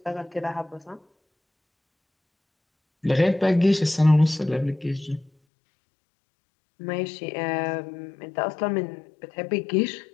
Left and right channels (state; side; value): drops out; right; at 5.3 s